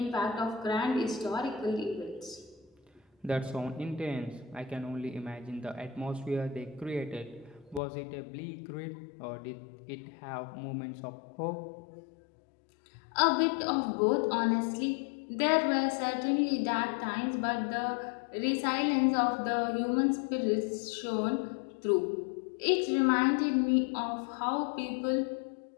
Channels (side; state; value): right; drops out; at 7.8 s